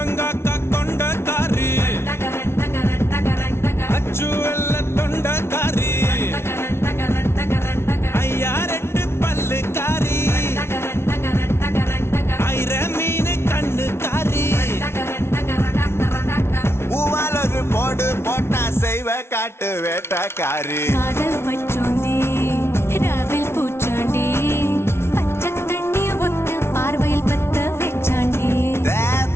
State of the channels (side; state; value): right; late; 0.12 ms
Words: கொண்டக்காரி டகரன் டகரன் டகரன் டகரன் அச்சு வெள்ள தொண்டக்காரி டகரன் டகரன் டகரன் டகரன் ஐயா ரெண்டு பல்லுக்காரி டகரன் டகரன் டகரன் டகரன் ஐர மீன் கண்ணுக்காரி டகரன் டகரன் டகரன் டகரன் பூவால் ஒரு போடு போட்டா செய்வ காட்டு வேட்டக்காரி காதல் மற்றும்